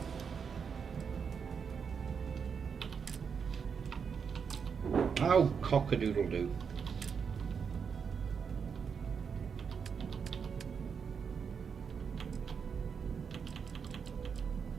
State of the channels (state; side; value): quieter; left; 6.4 dB